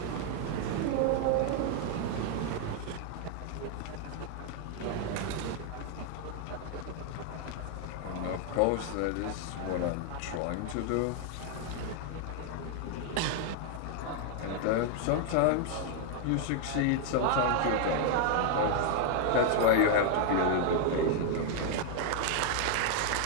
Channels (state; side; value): different; both; correlation 0.00